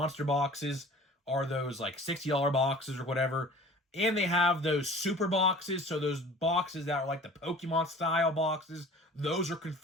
Boxes are those like $60 boxes or whatever, and they have those Super Boxes, so those boxes that are like the Pokemon style boxes, those are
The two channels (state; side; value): normal; both; correlation 0.45